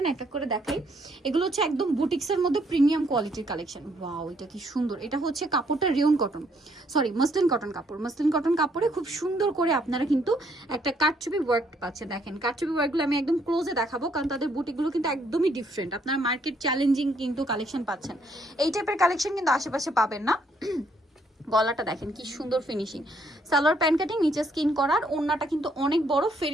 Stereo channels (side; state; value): both; normal; correlation 0.69